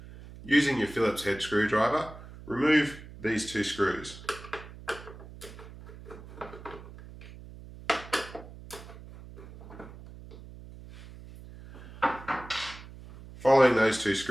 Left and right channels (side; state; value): right; noise; hum, 16 dB below the sound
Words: Using your Phillips head screwdriver, remove these 2 screws. Following those 2